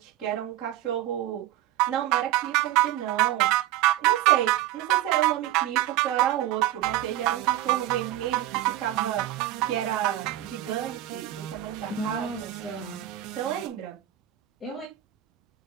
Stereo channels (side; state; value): left; quieter; 13.8 dB